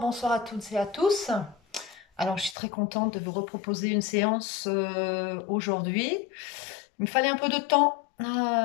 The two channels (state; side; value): drops out; right; at 2.6 s